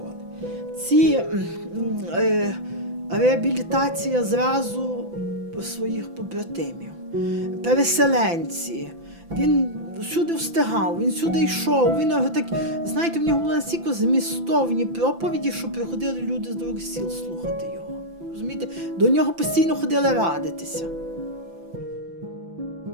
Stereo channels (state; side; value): late; left; 5.9 ms